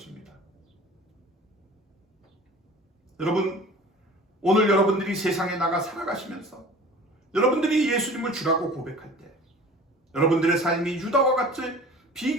여러분, 오늘 여러분들이 세상에 나가 살아가시면서 여러분들이 예수님을 주라고 고백할 때 여러분들의 삶이 유다와 같은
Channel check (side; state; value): both; normal; correlation 0.43